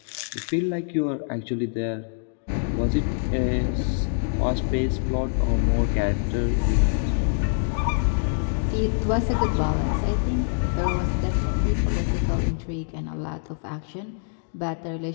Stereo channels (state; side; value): silent; right; digital silence